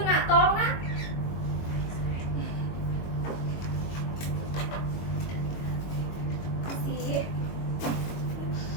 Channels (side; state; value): right; late; 22 ms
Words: Nak, tolong, Nak.